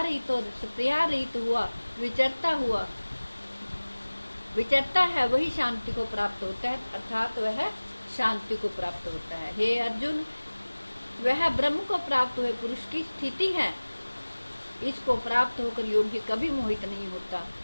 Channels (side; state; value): both; inverted; correlation -1.00